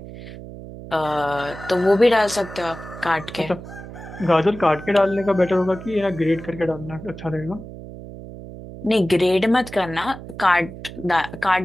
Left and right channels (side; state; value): right; noise; hum, 13 dB below the sound